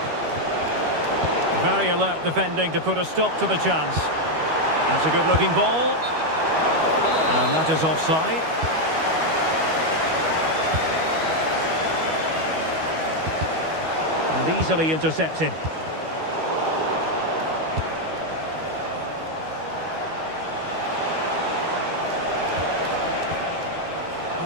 Very alert defending to put a stop to the chance. That's a good-looking ball. And that is offside. And easily intercepted.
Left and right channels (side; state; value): left; late; 12 ms